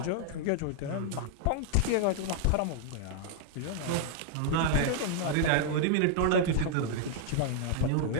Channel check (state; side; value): different; both; correlation 0.00